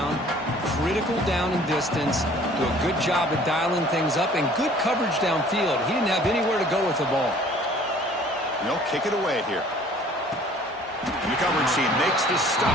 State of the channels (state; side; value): normal; both; correlation 0.52